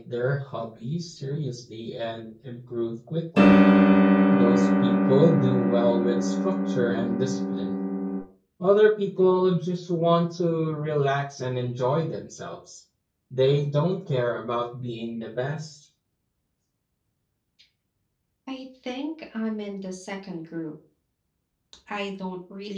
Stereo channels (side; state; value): both; identical; correlation 1.00